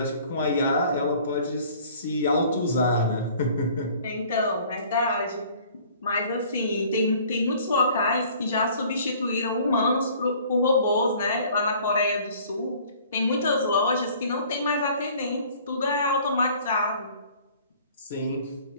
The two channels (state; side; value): inverted; both; correlation -0.52